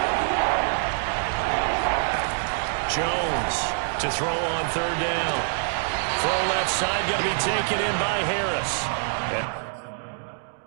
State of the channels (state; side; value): silent; left; digital silence